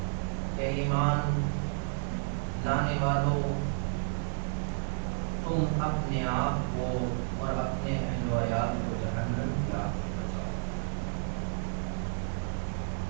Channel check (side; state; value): left; silent; digital silence